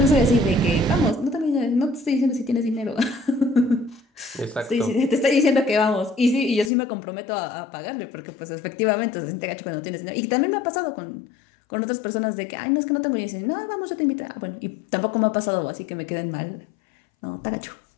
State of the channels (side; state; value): right; drops out; at 6.7 s